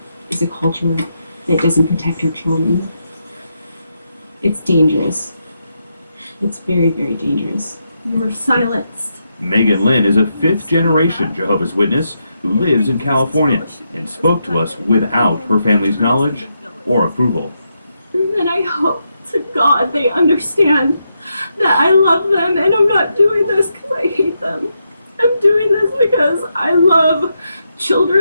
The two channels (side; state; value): both; inverted; correlation -0.83